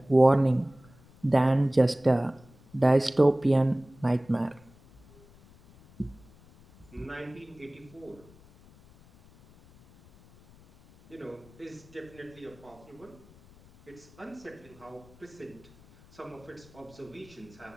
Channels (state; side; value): noise; left; rumble, 25 dB below the sound